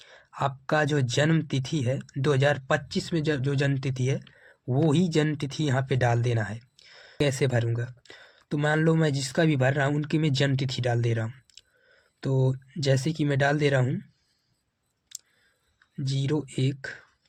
आपका जो जन्म तिथि है 2025 में जो जन्म तिथि है वो ही जन्म तिथि यहाँ पे डाल देना है। कैसे भरूँगा, तो मान लो मैं जिसका भी भर रहा हूँ उनकी मैं जन्म तिथि डाल दे रहा हूँ। तो जैसे कि मैं डाल दे रहा हूँ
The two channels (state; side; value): identical; both; correlation 1.00